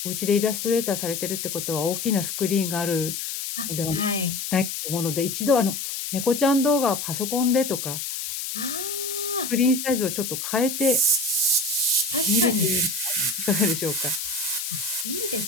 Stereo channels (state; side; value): noise; left; hiss, 5 dB below the sound